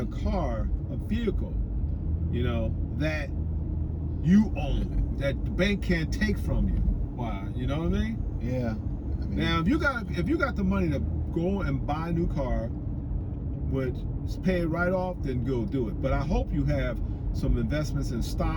car, a vehicle, you know, that you own, that the bank can't take from you. Why? You know what I mean? Yeah. Now, if you got the money to go and buy a new car, which is pay it right off, then go do it. But I hope you have some investments in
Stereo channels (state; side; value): identical; both; correlation 1.00